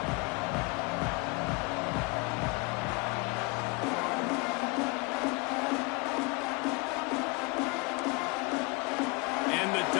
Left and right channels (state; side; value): quieter; right; 27.6 dB